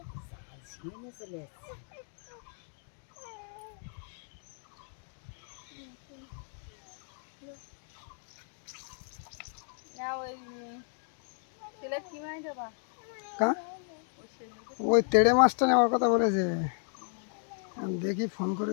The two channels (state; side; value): silent; right; 55 dB below the other